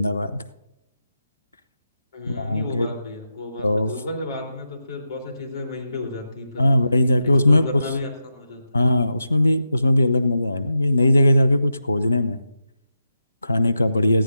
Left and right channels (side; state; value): both; inverted; correlation -0.88